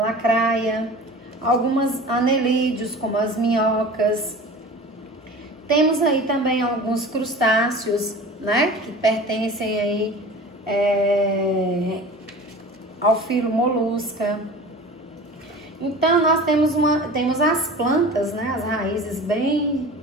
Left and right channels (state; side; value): normal; both; correlation 0.39